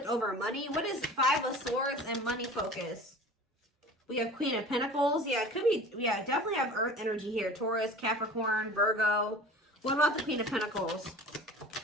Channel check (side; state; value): both; normal; correlation 0.41